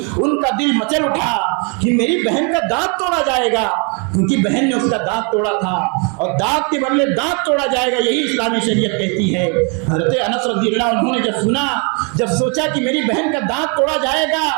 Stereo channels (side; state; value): left; quieter; 35.7 dB